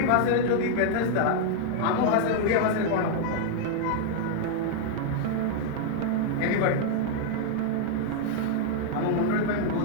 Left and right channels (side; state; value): both; different; correlation -0.01